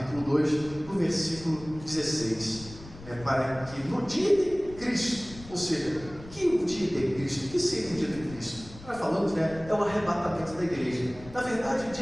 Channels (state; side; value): noise; left; rumble, 17 dB below the sound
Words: 2, no versículo 16, né, para que no dia de Cristo, ou seja, que o dia de Cristo, que seria o dia de Cristo? Nós falamos, né, é o arrebatamento da igreja. Na verdade, o